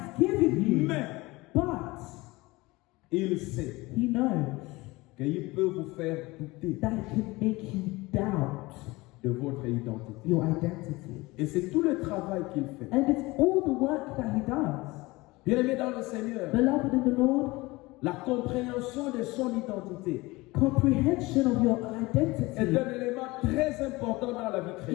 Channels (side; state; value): right; quieter; 21.8 dB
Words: given you. Mais But il sait he knows qu'il peut vous faire douter that he can make you doubt de votre identité. your identity. Et c'est tout le travail qu'il fait. And it's all the work that he does. Bien-aimé dans le Seigneur, Beloved in the Lord, la compréhension de son identité comprehension of your est identity un élément très important dans la vie is